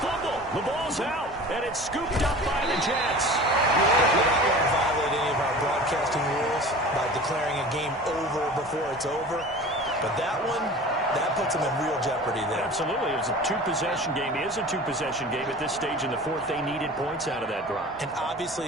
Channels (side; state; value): both; normal; correlation 0.39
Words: fumble. The ball's out, and it's scooped up by the Jets. We don't want to violate any of our broadcasting rules by declaring a game over before it's over. But that one, that puts them in real jeopardy there. Absolutely. It was a two-possession game. It is a two-possession game at this stage in the fourth. They needed points out of that drive. And